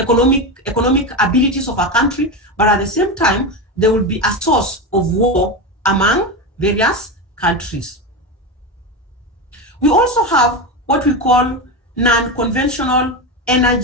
abilities of a country. But at the same time, there will be a source of war among various countries. We also have what we call non-conventional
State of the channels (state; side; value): normal; both; correlation 0.17